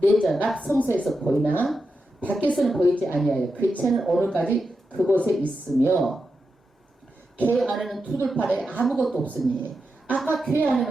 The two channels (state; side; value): normal; both; correlation 0.88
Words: 내전 앞 성소에서 보이나 밖에서는 보이지 아니하여 그 채는 오늘까지 그곳에 있으며 궤 안에는 두들판에 아무것도 없으니. 아까 궤